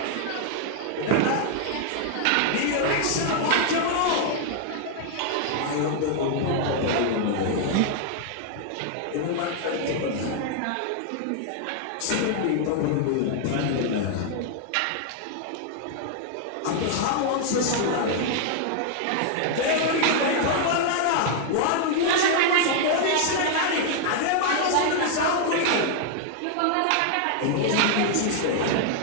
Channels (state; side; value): different; both; correlation 0.00